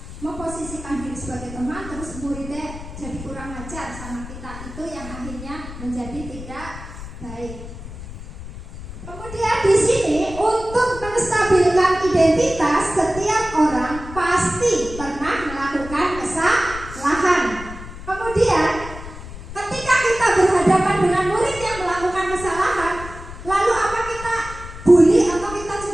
memposisikan diri sebagai teman, terus muridnya jadi kurang ajar sama kita, itu yang akhirnya menjadi tidak baik. Kemudian di sini untuk menstabilkan identitas, setiap orang pasti pernah melakukan kesalahan. Kemudian ketika kita berhadapan dengan murid yang melakukan kesalahan, lalu apa kita bully atau kita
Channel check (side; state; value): left; noise; rumble, 12 dB below the sound